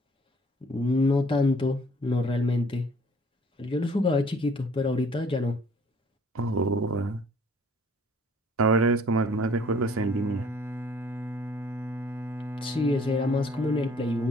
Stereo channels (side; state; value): both; normal; correlation 0.56